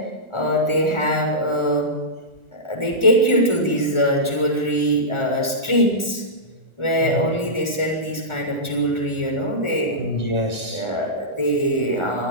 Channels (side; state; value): right; late; 1.4 ms